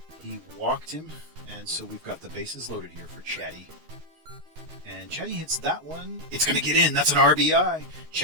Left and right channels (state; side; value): late; left; 13 ms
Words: And so we've got the bases loaded here for Chatty. And Chatty hits that one. It's going to get in. That's an RBI.